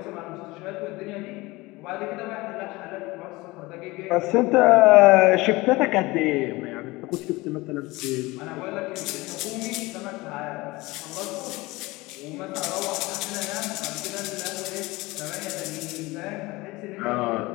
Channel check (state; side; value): quieter; right; 21.6 dB